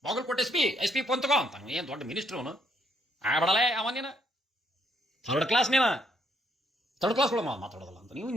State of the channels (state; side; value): normal; both; correlation 0.72